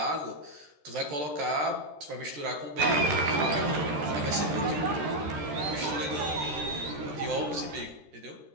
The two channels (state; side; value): late; left; 13 ms